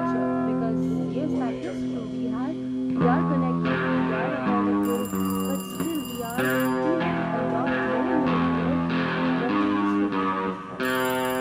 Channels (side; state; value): both; identical; correlation 1.00